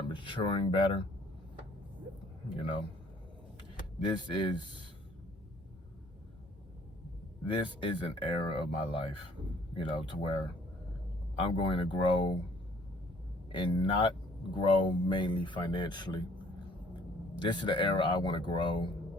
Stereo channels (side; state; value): both; normal; correlation 0.58